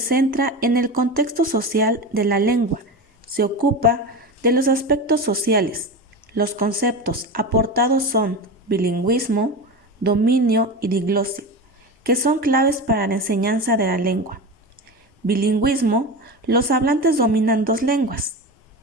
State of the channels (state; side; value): normal; both; correlation 0.24